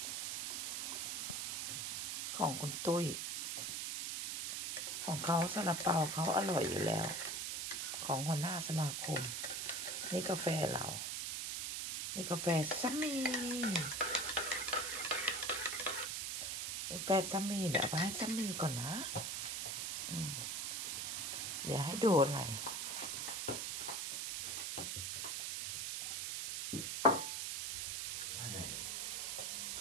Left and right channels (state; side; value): noise; right; hiss, 2 dB below the sound